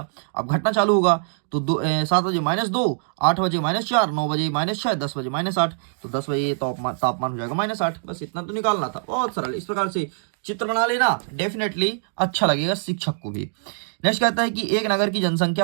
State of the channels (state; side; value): silent; left; digital silence